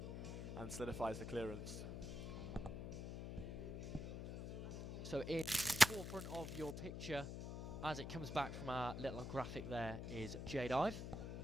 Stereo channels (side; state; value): left; noise; hum, 5 dB below the sound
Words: and solidifies the clearance. So in the forefront of your picture, as it comes back from our little graphic there, is Jade Ive.